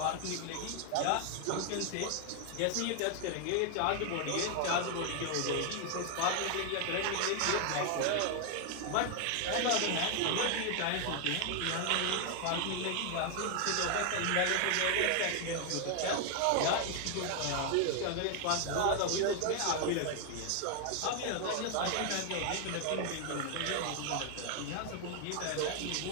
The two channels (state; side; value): different; both; correlation 0.00